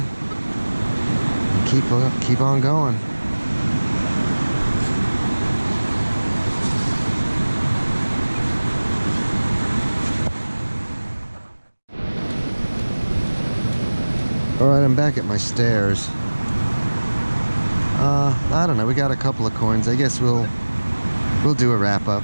Keep on going. Alright, I'm back at my stairs. I don't know, we got a couple of coins. I guess we'll do a wrap-up.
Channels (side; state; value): both; inverted; correlation -1.00